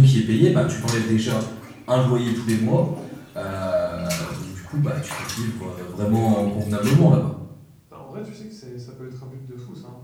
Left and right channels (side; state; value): both; identical; correlation 1.00